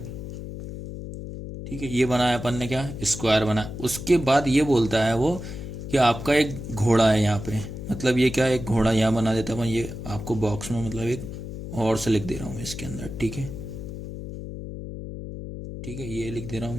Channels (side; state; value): left; noise; hum, 9 dB below the sound